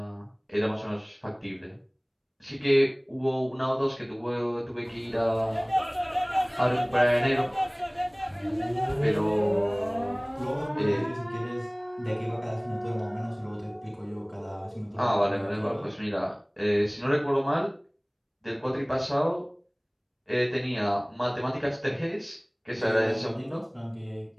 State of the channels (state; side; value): identical; both; correlation 1.00